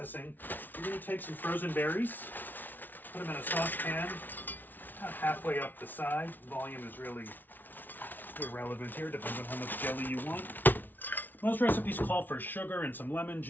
you're gonna take some frozen berries, put them in a saucepan, about halfway up the side. Volume is really irrelevant here, depends on how much jelly you want. Most recipes call for sugar and some lemon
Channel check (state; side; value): late; right; 0.086 ms